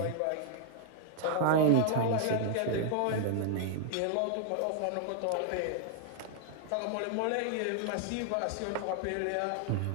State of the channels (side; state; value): both; different; correlation 0.00